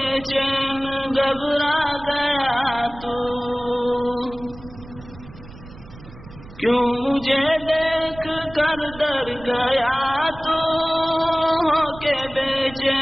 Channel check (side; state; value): right; noise; rumble, 18 dB below the sound